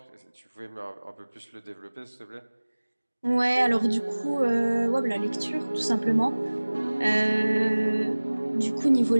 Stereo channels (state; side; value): inverted; both; correlation -1.00